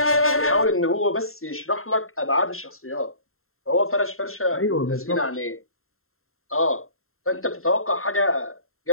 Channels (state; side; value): late; right; 0.62 ms